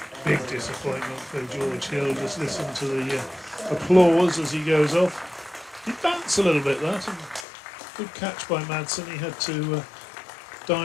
Big disappointment for George Hill. Just listen to the applause as he goes off. He bounced a little bit, that. Good catch by Madsen. He had to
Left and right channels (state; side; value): drops out; right; at 7.5 s